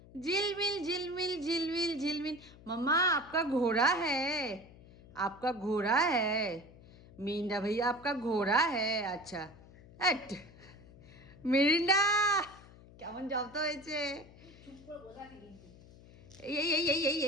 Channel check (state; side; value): noise; left; hum, 21 dB below the sound